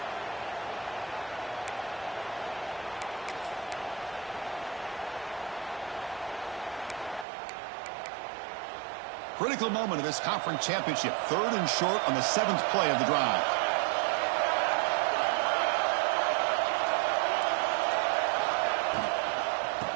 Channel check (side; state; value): left; drops out; at 7.2 s